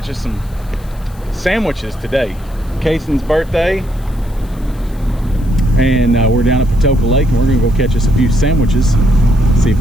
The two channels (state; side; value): noise; left; hiss, 26 dB below the sound